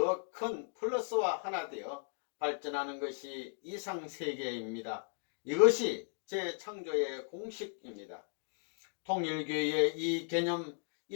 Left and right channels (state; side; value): silent; right; 54 dB below the other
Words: 큰 플러스와 하나 되어 발전하는 것이 이상세계입니다. 이것이 재창조의 공식입니다. 통일교회의 이 개념